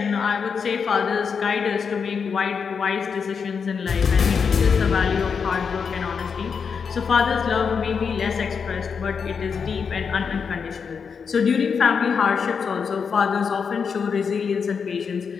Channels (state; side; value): quieter; right; 6.1 dB